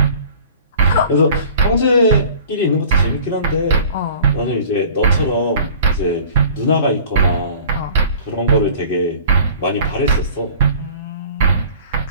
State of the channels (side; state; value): both; inverted; correlation -0.47